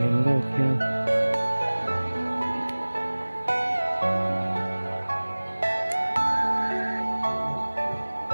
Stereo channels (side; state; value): both; inverted; correlation -1.00